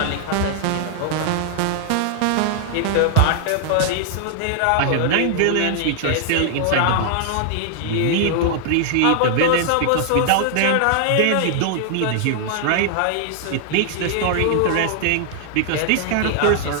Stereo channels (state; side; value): different; both; correlation -0.01